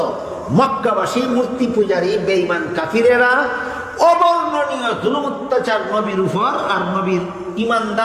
মক্কাবাসী মূর্তি পূজারী বেঈমান কাফিরেরা অবর্ণনীয় জুলুম অত্যাচার নবীর উপর আর নবীর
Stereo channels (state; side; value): identical; both; correlation 1.00